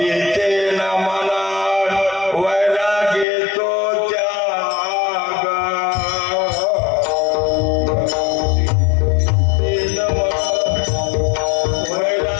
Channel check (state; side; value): drops out; right; at 3.2 s